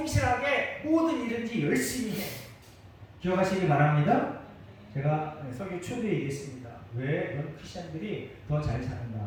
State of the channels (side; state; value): both; identical; correlation 1.00